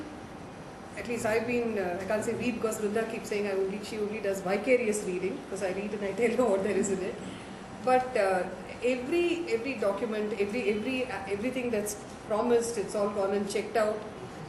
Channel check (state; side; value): identical; both; correlation 1.00